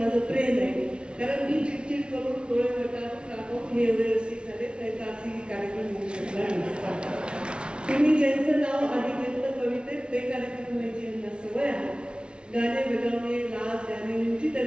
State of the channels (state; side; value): late; left; 0.057 ms